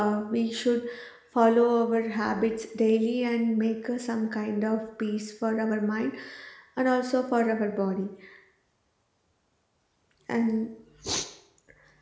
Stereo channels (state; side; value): identical; both; correlation 1.00